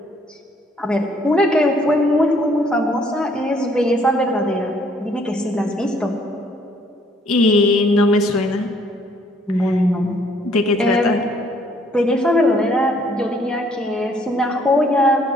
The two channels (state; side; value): normal; both; correlation 0.64